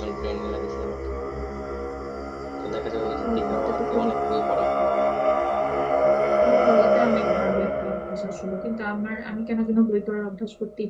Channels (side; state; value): both; identical; correlation 1.00